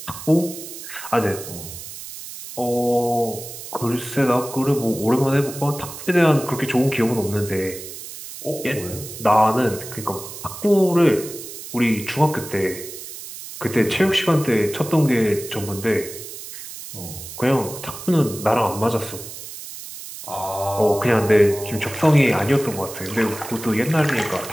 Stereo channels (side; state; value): right; noise; hiss, 12 dB below the sound